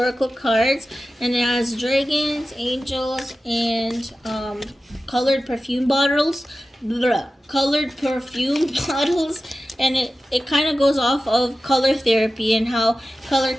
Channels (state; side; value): normal; both; correlation 0.94